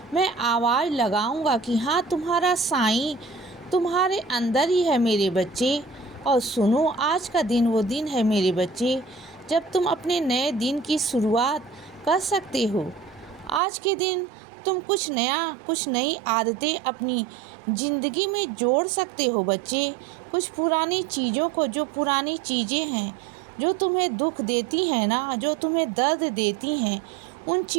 मैं आवाज़ लगाऊंगा कि हाँ, तुम्हारा साईं तुम्हारे अंदर ही है मेरे बच्चे। और सुनो, आज का दिन वो दिन है मेरे बच्चे, जब तुम अपने नए दिन की शुरुआत कर सकते हो। आज के दिन तुम कुछ नया, कुछ नई आदतें अपनी ज़िंदगी में जोड़ सकते हो बच्चे। कुछ पुरानी चीज़ों को, जो पुरानी चीज़ें हैं जो तुम्हें दुख देती हैं ना, जो तुम्हें दर्द देती हैं, उन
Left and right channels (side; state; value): left; drops out; at 13.6 s